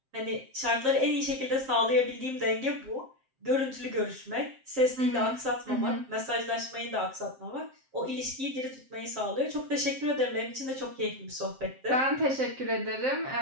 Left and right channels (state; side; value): late; left; 7.6 ms